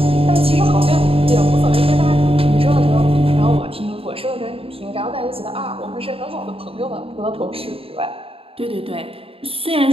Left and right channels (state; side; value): late; left; 0.27 ms